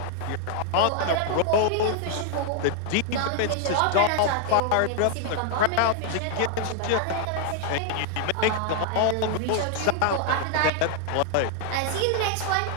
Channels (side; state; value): both; different; correlation 0.00